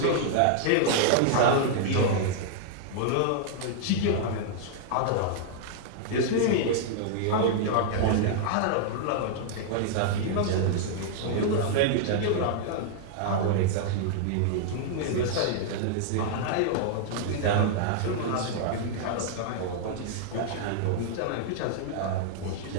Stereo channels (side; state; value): both; different; correlation -0.01